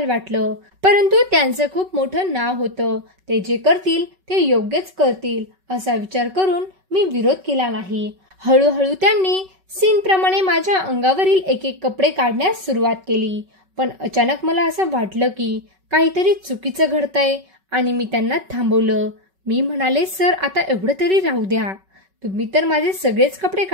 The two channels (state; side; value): late; left; 5.3 ms